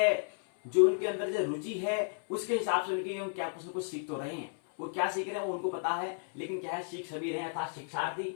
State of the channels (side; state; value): right; silent; 56 dB below the other